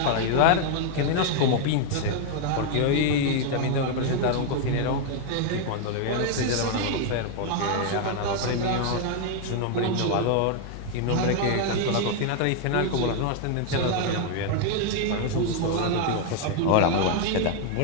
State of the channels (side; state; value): both; different; correlation 0.00